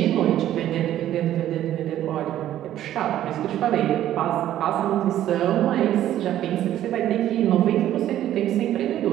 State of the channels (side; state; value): left; quieter; 12.3 dB